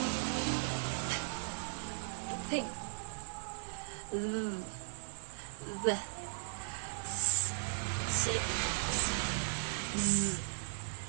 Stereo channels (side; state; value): left; silent; 53 dB below the other